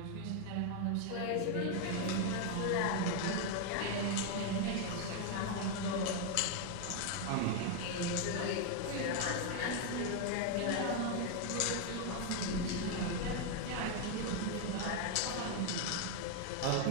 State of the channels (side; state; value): both; different; correlation 0.01